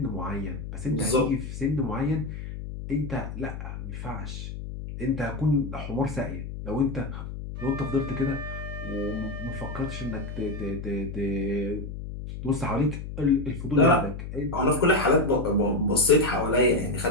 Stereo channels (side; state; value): left; noise; hum, 8 dB below the sound